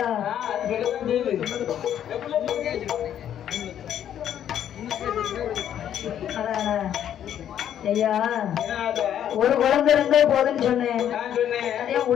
ஐயா ஒரு குழந்தை இருந்தா போதுன்னு சொன்னேன். அதே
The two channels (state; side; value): quieter; right; 10.2 dB